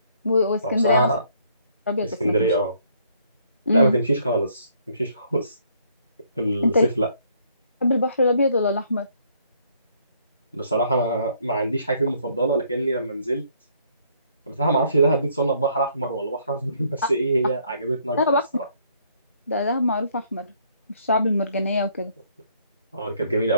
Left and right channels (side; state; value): both; inverted; correlation -0.66